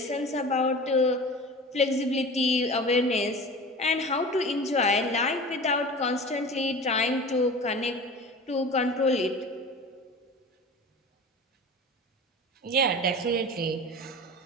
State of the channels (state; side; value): normal; both; correlation 0.35